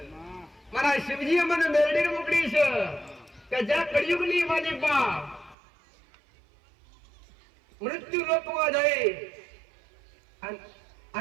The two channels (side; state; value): left; drops out; at 5.6 s